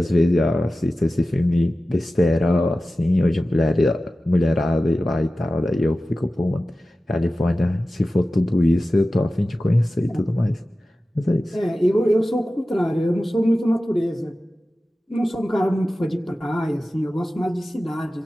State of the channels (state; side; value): normal; both; correlation 0.95